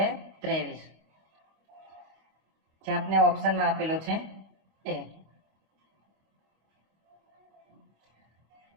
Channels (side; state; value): left; late; 25 ms